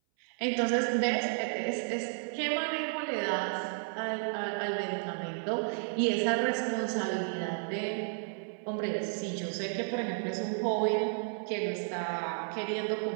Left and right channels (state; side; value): silent; left; 56 dB below the other